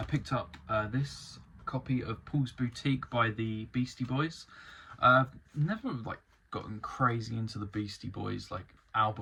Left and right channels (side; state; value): both; identical; correlation 1.00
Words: picked up this copy of Paul's Boutique by the Beastie Boys. Never gotten crazy into the Beastie Boys